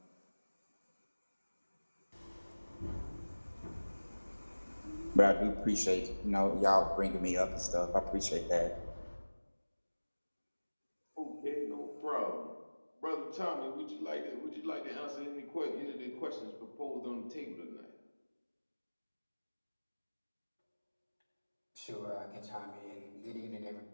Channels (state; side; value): inverted; both; correlation -1.00